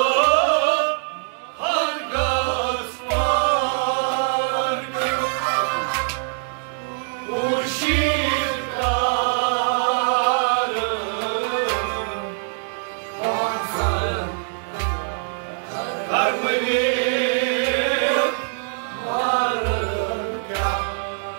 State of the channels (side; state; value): left; silent; 58 dB below the other